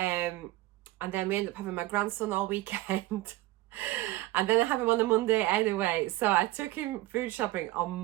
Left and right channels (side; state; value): left; quieter; 18.3 dB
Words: then we ended up having my grandson all weekend. And then I have him on a Monday anyway, so I took him food shopping on